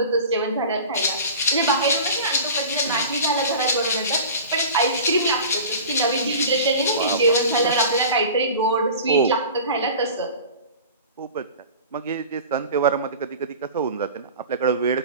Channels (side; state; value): both; inverted; correlation -0.38